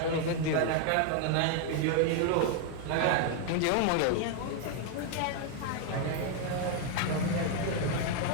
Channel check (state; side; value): different; both; correlation 0.01